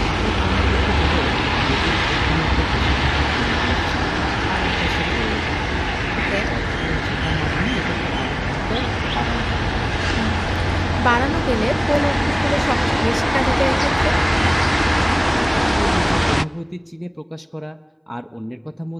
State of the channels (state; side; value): identical; both; correlation 1.00